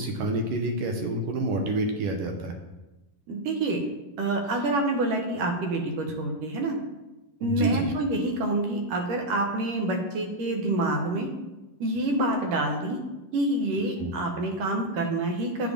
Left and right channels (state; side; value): late; left; 11 ms